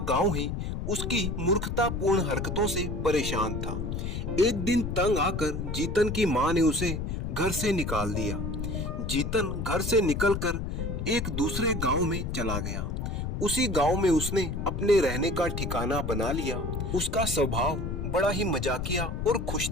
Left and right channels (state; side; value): noise; left; rumble, 3 dB below the sound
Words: गांव ही उसकी मूर्खतापूर्ण हरकतों से परेशान था। एक दिन तंग आकर जीतन की माँ ने उसे घर से निकाल दिया। जीतन घर से निकलकर एक दूसरे गांव में चला गया। उसी गांव में उसने अपने रहने का ठिकाना बना लिया। उसका स्वभाव बड़ा ही मजाकिया और